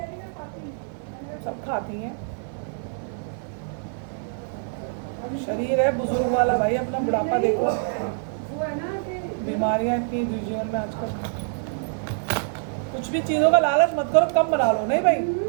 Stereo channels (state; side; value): silent; left; digital silence